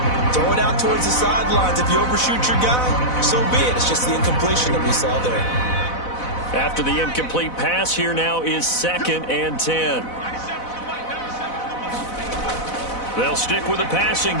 Throw it out towards the sidelines. If you overshoot your guy, so be it. It's just the incompletion that we saw there. After the incomplete pass, here now is 2nd and 10. They'll stick with the passing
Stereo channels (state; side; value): late; right; 4.0 ms